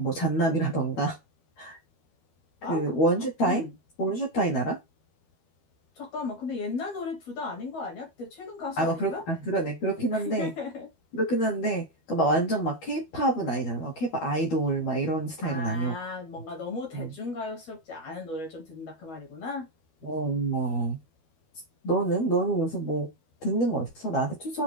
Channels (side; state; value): right; late; 12 ms